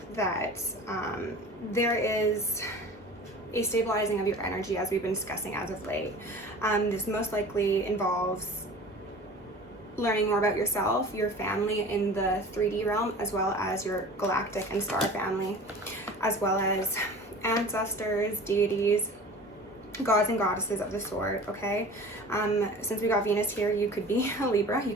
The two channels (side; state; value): both; normal; correlation 0.40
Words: that there is a stabilizing of your energy, as we've been discussing as of late. This most likely involves learning more about yourself, your family in the 3D realm, as well as your galactic and star family, as well as ancestors, deities, gods and goddesses of the sort, okay? Since we got Venus here, you could be a Libra, you